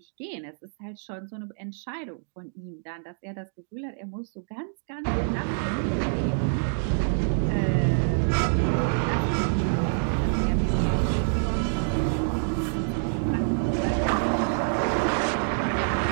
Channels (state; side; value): silent; left; digital silence